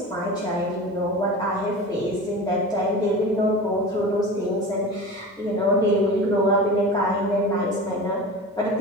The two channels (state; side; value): normal; both; correlation 0.32